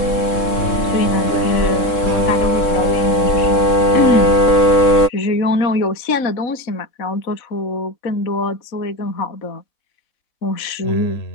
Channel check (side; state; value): right; late; 3.7 ms